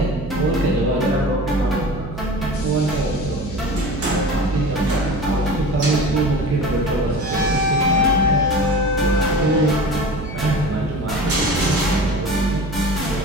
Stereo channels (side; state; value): right; noise; hum, 10 dB below the sound